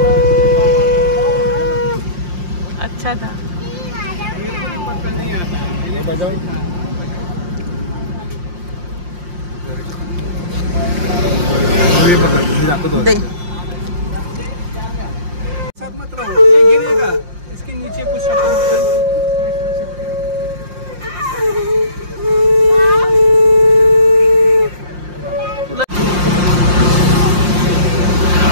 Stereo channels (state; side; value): late; left; 5.7 ms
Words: अच्छा था. पक्का नहीं आता है. बजाओ. दे. साथ मत रहो, ये गिरेगा. इसके नीचे कुछ